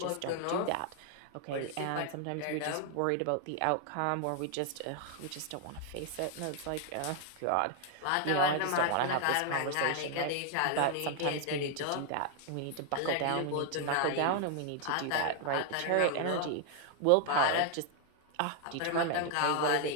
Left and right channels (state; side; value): different; both; correlation 0.00